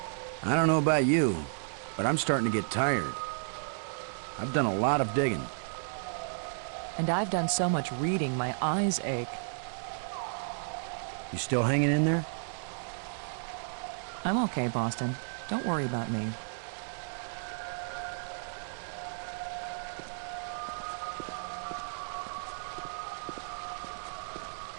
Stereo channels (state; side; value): silent; left; digital silence